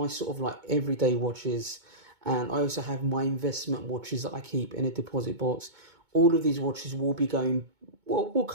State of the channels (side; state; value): left; late; 2.2 ms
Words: sort of like everyday watches. And I also have my investment watches that I keep in a deposit box. All of these watches will be going, well, will